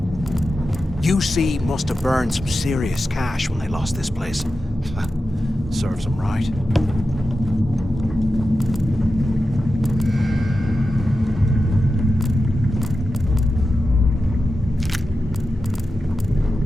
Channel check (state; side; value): normal; both; correlation 0.91